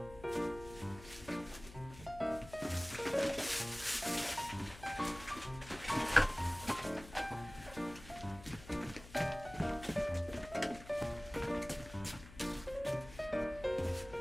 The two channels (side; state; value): left; noise; hum, 17 dB below the sound